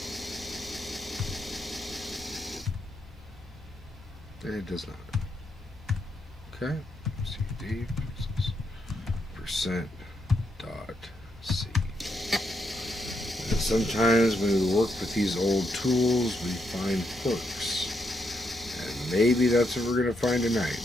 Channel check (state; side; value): normal; both; correlation 0.79